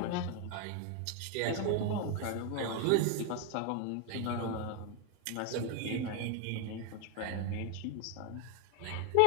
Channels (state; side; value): different; both; correlation 0.01